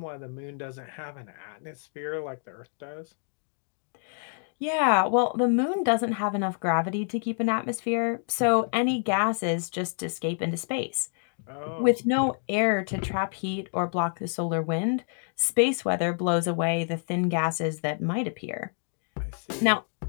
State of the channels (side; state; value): right; silent; 59 dB below the other